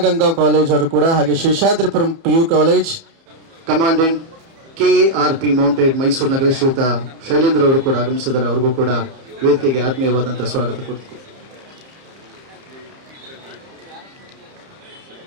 college ಅವರು ಕೂಡ, ಹಾಗೆ Seshadripuram PU college commandant KARP mounted Mysuru ನಗರ ಶ್ರೀಯುತ ಶೈಲೇಂದ್ರ ಅವರು ಕೂಡ ಆಗಮಿಸಿದ್ದಾರೆ. ಅವ್ರಿಗೂ ಕೂಡ ವೇದಿಕೆಗೆ ಆತ್ಮೀಯವಾದಂತಹ ಸ್ವಾಗತ ಕೊಡ್ತೀವಿ.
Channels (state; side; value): late; left; 31 ms